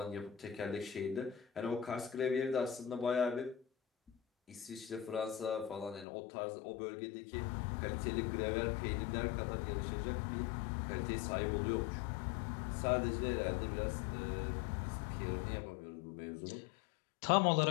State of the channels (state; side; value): drops out; right; at 6.1 s